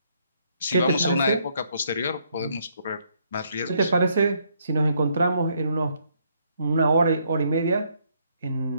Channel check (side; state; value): both; inverted; correlation -0.71